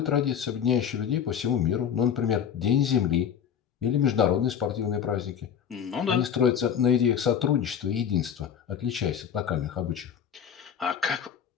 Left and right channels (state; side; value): quieter; right; 8.3 dB